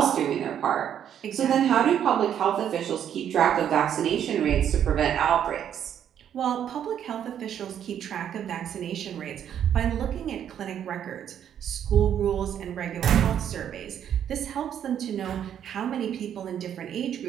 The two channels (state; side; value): quieter; left; 9.5 dB